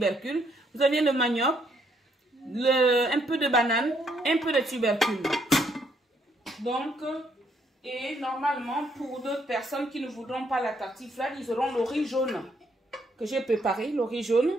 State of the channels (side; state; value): both; normal; correlation 0.71